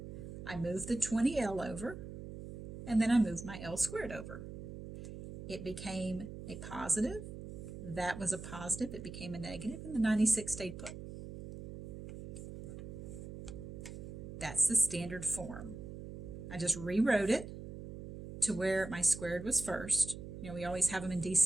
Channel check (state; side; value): noise; right; hum, 10 dB below the sound